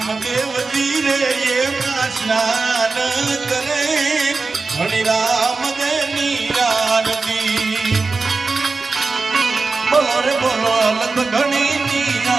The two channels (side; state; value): left; quieter; 4.0 dB